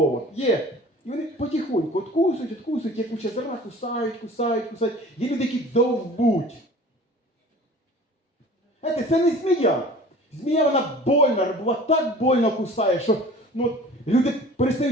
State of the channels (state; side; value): normal; both; correlation 0.44